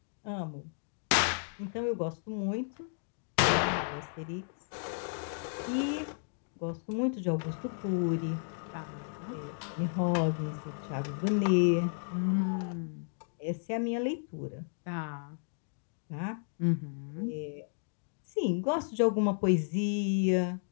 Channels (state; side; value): silent; right; digital silence